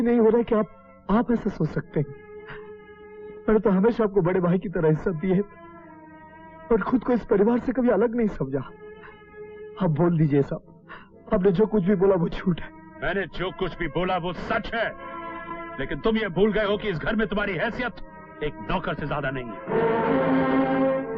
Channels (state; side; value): identical; both; correlation 1.00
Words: नहीं हो रहा है कि आप ऐसा सोच सकते हैं। मैंने तो हमेशा आपको बड़े भाई की तरह इज्जत दी है और खुद को इस परिवार से कभी अलग नहीं समझा। आप बोल दीजिए साहब, आपने जो कुछ भी बोला वो झूठ है। मैंने जो कुछ भी बोला वो सच है, लेकिन तुम ये भूल गए हो कि इस घर में तुम्हारी हैसियत एक नौकर से ज्यादा नहीं है।